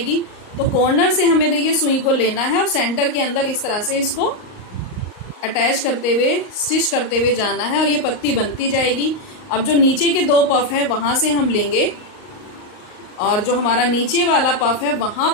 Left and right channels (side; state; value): right; late; 38 ms